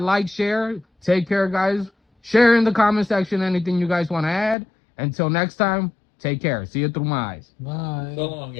like, share. Take care, guys. Share in the comment section anything you guys want to add. Until next time, take care. See you through my eyes. Bye. So long,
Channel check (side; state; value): right; drops out; at 4.5 s